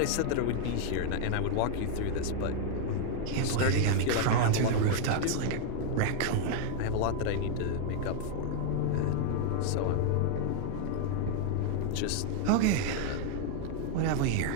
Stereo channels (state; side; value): different; both; correlation 0.00